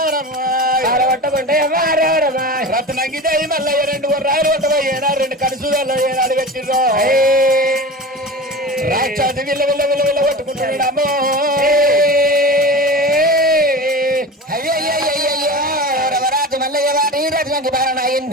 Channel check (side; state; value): both; normal; correlation 0.31